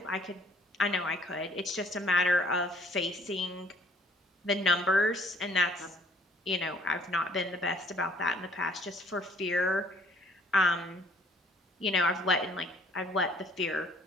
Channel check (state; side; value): normal; both; correlation 0.59